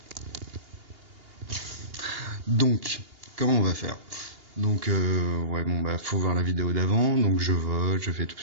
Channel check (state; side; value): late; left; 2.8 ms